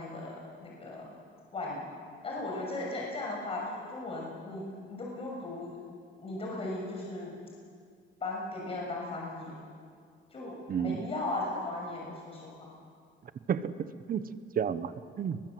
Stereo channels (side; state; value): both; normal; correlation 0.33